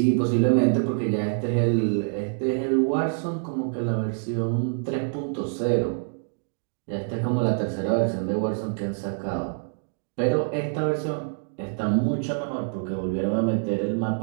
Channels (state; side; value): silent; left; digital silence